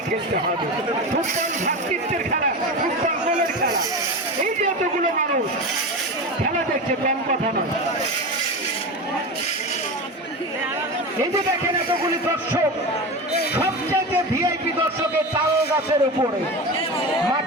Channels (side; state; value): both; normal; correlation 0.24